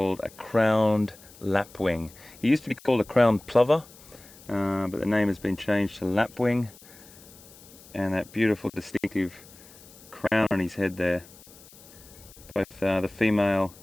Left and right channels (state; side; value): noise; left; hiss, 22 dB below the sound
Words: a crowned lapwing. He used to be called a crowned plover, but the name has been changed to lapwing, and that beautiful distinctive crown on his head there. Both the female